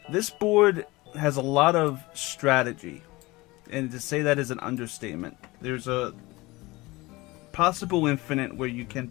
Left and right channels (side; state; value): right; quieter; 21.5 dB